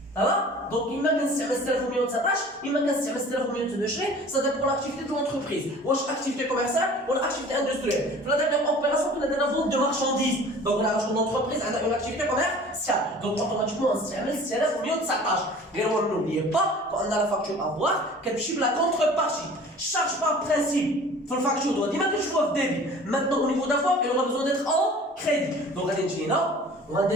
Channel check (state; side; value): normal; both; correlation 0.45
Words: Ça va? Donc, il m'a كنستعمل 6119, il m'a كنستعمل 6122, ça dépend pour l'activité de l'entreprise. واش activité commerciale ou l'activité industrielle. Pour la dernière opération, on a de la vente de marchandises. Donc, là, l'entreprise a une activité commerciale. Donc, automatiquement, on s'amène 6119. Mais n'oubliez pas qu'on a la facture à voir, qu'elle chiffre la contrepartie. Charge par principe. Pour la facture, on doit dire que je vois débit. Maintenant, au niveau d'avoir, il aura besoin d'être en crédit. Donc, on va dire là, on va